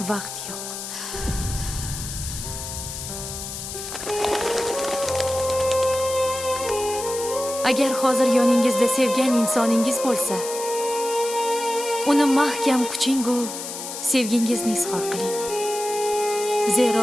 vaqt yo'q. Agar hozir yoningizda sevgan insoningiz bo'lsa, uni mahkam quching-u sevgingizni izhor qiling.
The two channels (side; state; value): left; noise; hiss, 8 dB below the sound